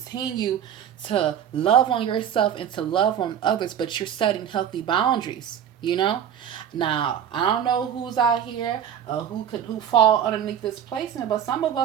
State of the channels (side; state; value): left; quieter; 9.3 dB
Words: to love on yourself and to love on others, but you're setting healthy boundaries. You know, now I don't know who's out here, who fall underneath this placement, but some of